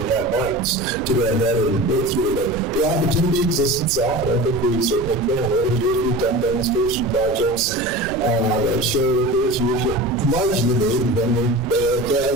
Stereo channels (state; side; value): noise; right; rumble, 14 dB below the sound